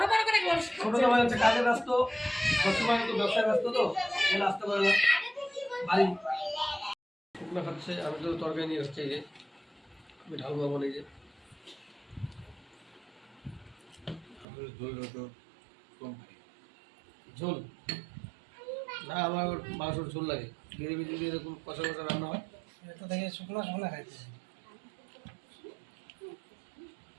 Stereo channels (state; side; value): drops out; left; at 14.5 s